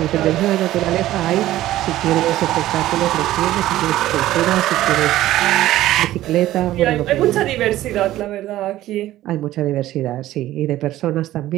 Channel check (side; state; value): left; quieter; 14.7 dB